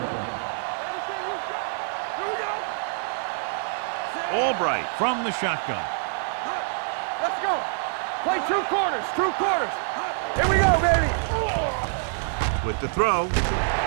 line. Everything you got. Here we go. Albright from the shotgun. Let's go. Play 2 quarters. 2 quarters. Here we go, baby. With the throw.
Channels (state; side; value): silent; left; digital silence